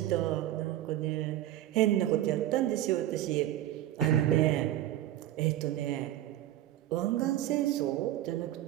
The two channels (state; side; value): quieter; left; 13.5 dB